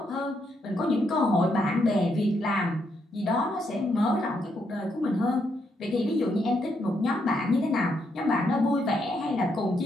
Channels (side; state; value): both; normal; correlation 0.77